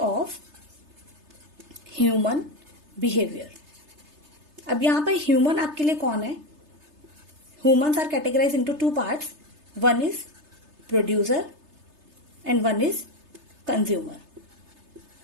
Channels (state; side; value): late; left; 3.3 ms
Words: human behaviour. अब यहां पर ह्यूमन आपके लिए कौन है? Humans are categorise into two parts, one is producer and one is consumer,